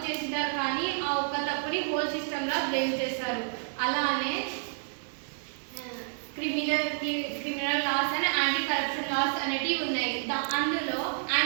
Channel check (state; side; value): silent; left; digital silence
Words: చేసినారు కానీ ఆ ఒక్క తప్పుని హోల్ సిస్టమ్లా బ్లేమ్ చేస్తారు. అలానే criminal laws and anti corruption laws అనేటివి ఉన్నాయి. అందులో